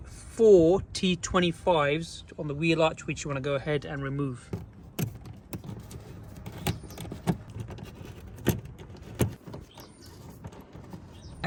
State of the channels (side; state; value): both; identical; correlation 1.00